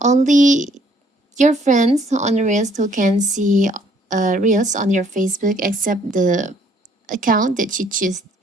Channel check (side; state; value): both; normal; correlation 0.63